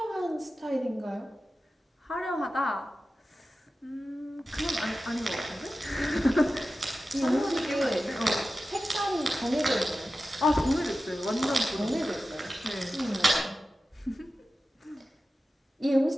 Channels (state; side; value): normal; both; correlation 0.94